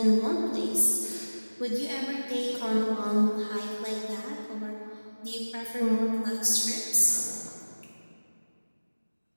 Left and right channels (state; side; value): inverted; both; correlation -1.00